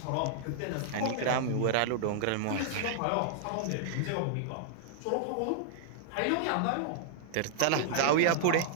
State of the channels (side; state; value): both; different; correlation -0.01